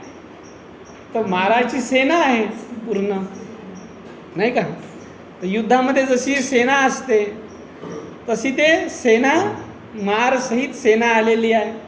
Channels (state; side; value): identical; both; correlation 1.00